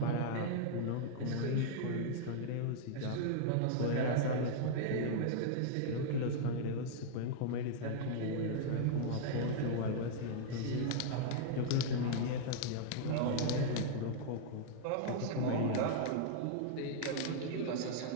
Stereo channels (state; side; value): different; both; correlation -0.01